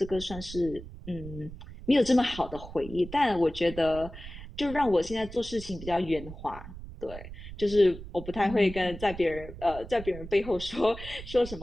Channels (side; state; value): right; noise; rumble, 13 dB below the sound